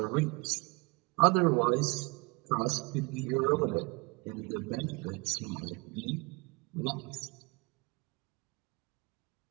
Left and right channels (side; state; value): left; quieter; 28.2 dB